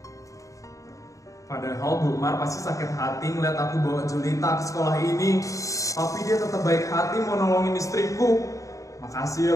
Padahal Bu Mar pasti sakit hati ngeliat aku bawa Julita ke sekolah ini. Tapi dia tetap baik hati mau nolongin istriku. Makasih ya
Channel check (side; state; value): right; late; 0.16 ms